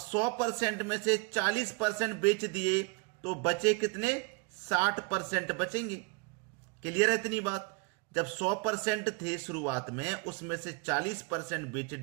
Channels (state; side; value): quieter; left; 29.7 dB